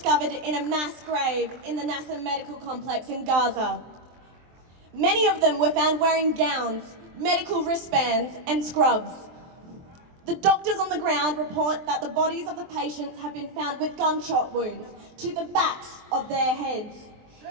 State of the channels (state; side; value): late; left; 23 ms